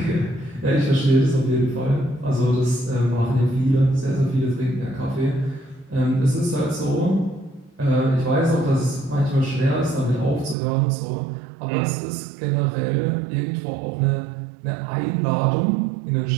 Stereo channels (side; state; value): left; drops out; at 10.6 s